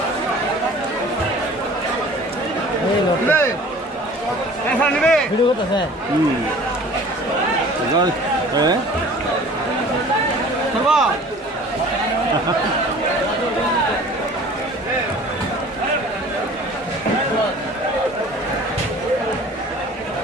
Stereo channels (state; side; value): normal; both; correlation 0.46